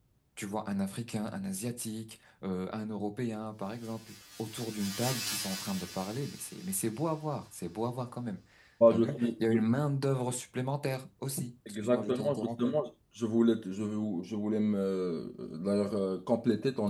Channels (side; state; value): both; identical; correlation 1.00